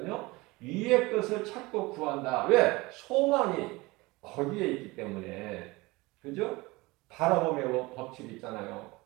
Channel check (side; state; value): left; quieter; 22.3 dB